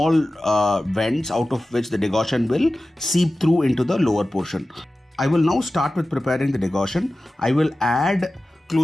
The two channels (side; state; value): both; normal; correlation 0.95